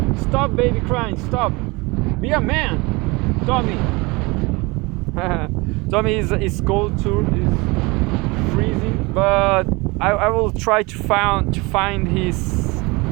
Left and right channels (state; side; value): quieter; left; 25.2 dB